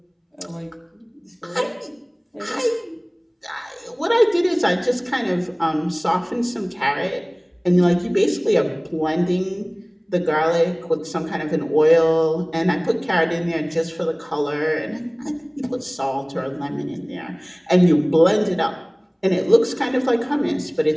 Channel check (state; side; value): identical; both; correlation 1.00